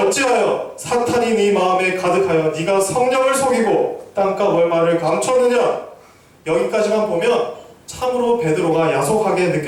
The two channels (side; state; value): both; identical; correlation 1.00